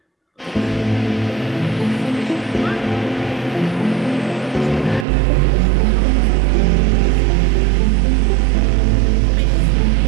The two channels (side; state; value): left; drops out; at 5.1 s